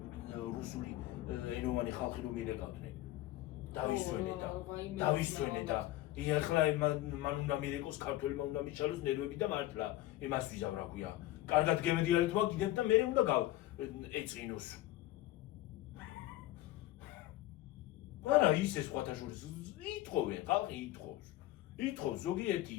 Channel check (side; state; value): right; quieter; 15.8 dB